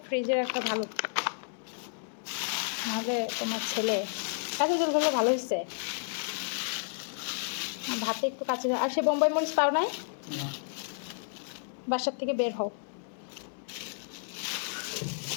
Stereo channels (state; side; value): silent; right; digital silence